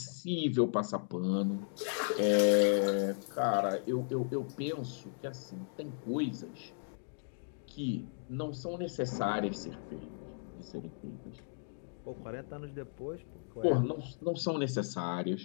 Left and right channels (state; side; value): silent; right; digital silence